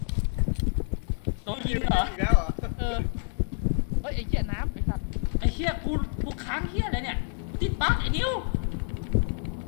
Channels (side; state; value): right; silent; 59 dB below the other